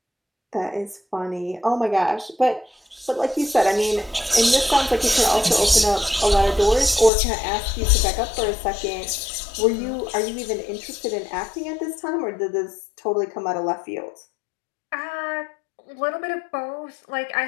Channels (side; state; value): right; drops out; at 7.1 s